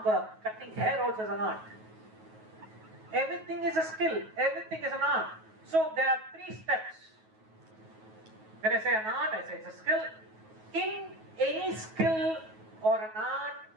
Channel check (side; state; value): left; late; 9.3 ms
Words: cutting hair also is an art. Everything is a skill, everything is an art. So there are 3 steps. When I say an art, I say it's a skill. In any skill or an art